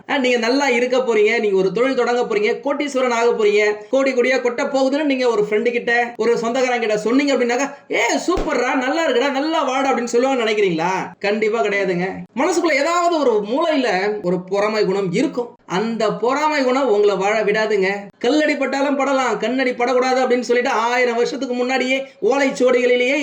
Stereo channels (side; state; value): both; identical; correlation 1.00